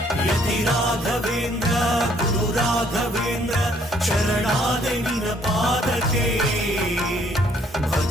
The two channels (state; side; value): normal; both; correlation 0.65